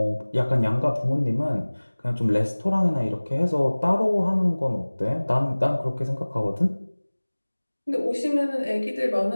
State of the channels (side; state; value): both; inverted; correlation -1.00